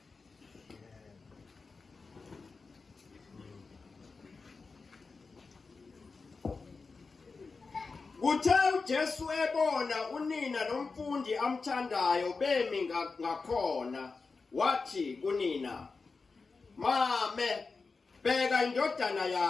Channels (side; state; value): right; quieter; 4.4 dB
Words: Uthe uJesu ebona unina nomfundi amthandayo bemi ngakhona wathi kunina, "Mame, bheka indodana